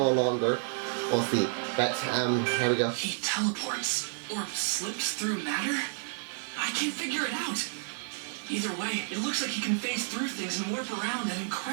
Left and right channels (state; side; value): silent; left; digital silence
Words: longer. We'll see. But here we go. He teleports or slips through matter? I can't figure it out. Either way, it looks like he can phase through things and warp around at